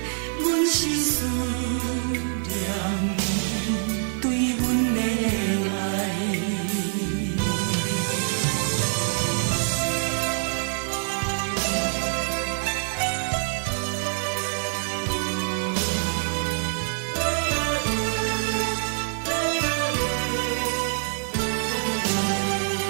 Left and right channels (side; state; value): left; silent; digital silence